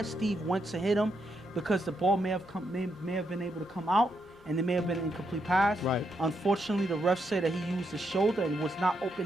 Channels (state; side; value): normal; both; correlation 0.80